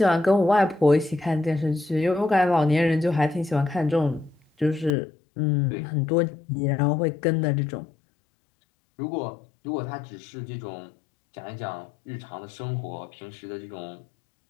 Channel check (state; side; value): drops out; right; at 4.9 s